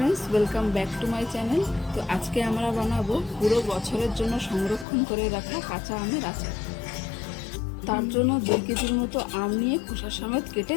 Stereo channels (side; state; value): right; drops out; at 4.9 s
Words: welcome back to my channel. তো আজকে আমরা বানাবো পুরো বছরের জন্য সংরক্ষণ করে রাখা কাঁচা আমের আচার। তার জন্য 2 কেজির মতো আম নিয়ে খোসা সমেত কেটে